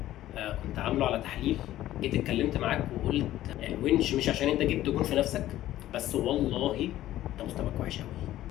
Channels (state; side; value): quieter; right; 14.0 dB